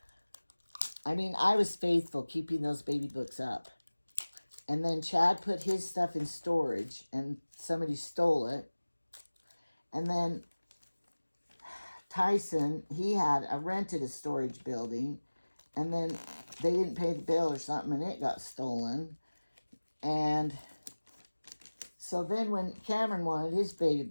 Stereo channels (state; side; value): inverted; both; correlation -1.00